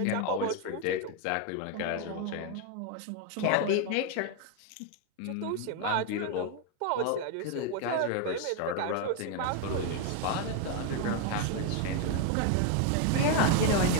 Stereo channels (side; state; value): both; different; correlation 0.00